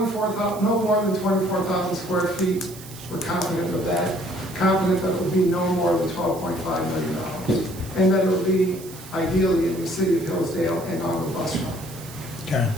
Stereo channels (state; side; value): noise; right; hiss, 17 dB below the sound